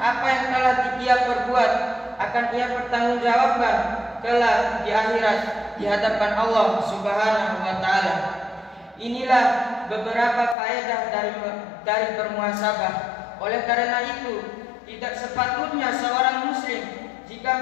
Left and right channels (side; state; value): right; drops out; at 10.6 s